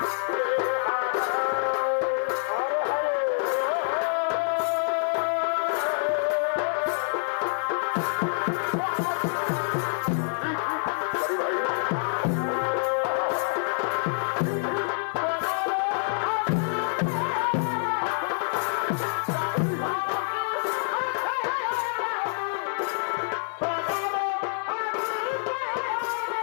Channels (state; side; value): silent; right; digital silence